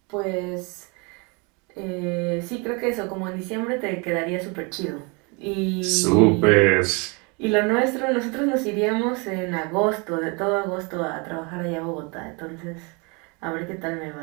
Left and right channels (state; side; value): quieter; left; 30.8 dB